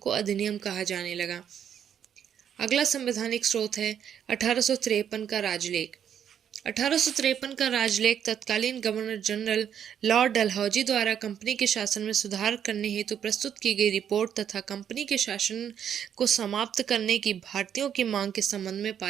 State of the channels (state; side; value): quieter; left; 8.9 dB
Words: अधिनियम कहा जाने लगा। अगला संवैधानिक स्रोत है 1853 का राजलेख। 1853 का राजलेख तत्कालीन गवर्नर जनरल लॉर्ड डलहौजी द्वारा कंपनी के शासन में सुधार करने हेतु प्रस्तुत की गई रिपोर्ट तथा कंपनी के शासन को समाप्त करने की भारतीयों की मांग के संबंध में